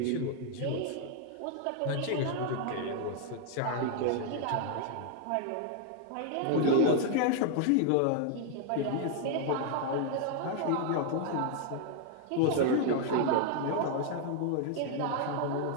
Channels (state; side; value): different; both; correlation 0.00